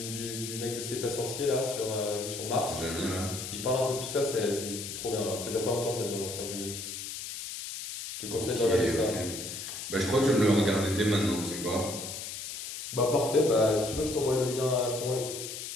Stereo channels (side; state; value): left; noise; hiss, 7 dB below the sound